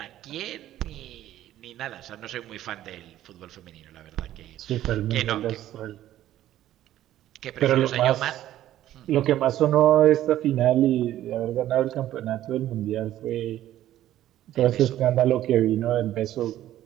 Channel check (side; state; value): left; quieter; 13.1 dB